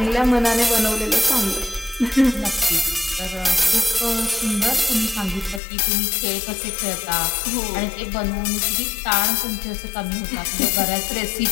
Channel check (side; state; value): right; drops out; at 5.6 s